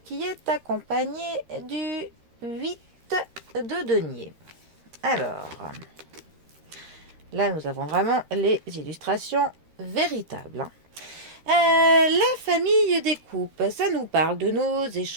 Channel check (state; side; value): late; left; 13 ms